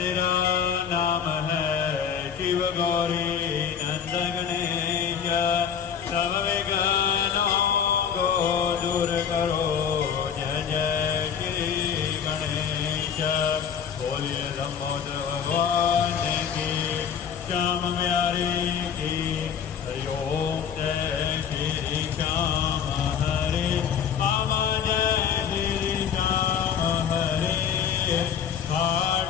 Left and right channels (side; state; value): right; quieter; 7.8 dB